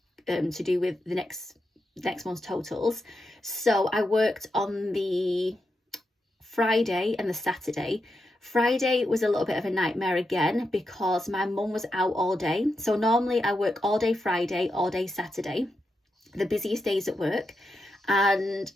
to do with the next month's totals. So I worked on the Friday and the Saturday. Friday was a little bit of a nightmare again because my mum was out all day. So normally I work all day Friday, all day Saturday, the busiest days at work. And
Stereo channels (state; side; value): normal; both; correlation 0.86